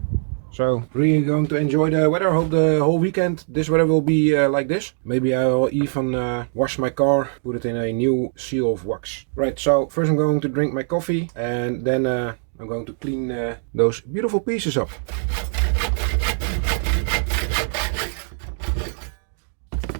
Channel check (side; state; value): left; silent; digital silence